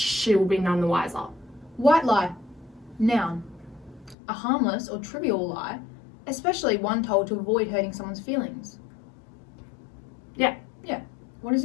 will be none the wiser. White lie. Noun. A harmless or trivial lie, especially one told to avoid hurting someone's feelings. Yeah. Yeah. What is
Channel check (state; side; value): drops out; right; at 4.2 s